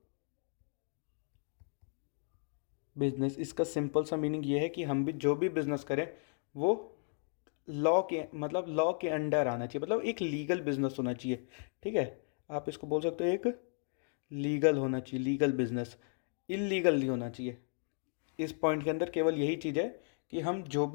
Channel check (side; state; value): right; silent; 54 dB below the other